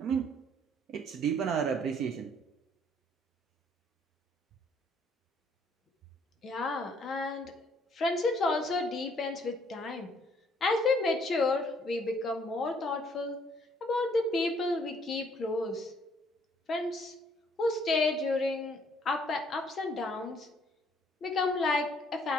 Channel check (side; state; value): both; normal; correlation 0.64